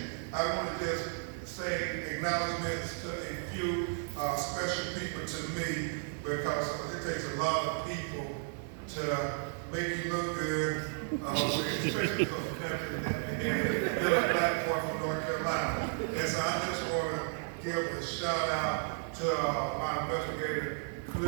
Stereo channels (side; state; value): left; silent; 55 dB below the other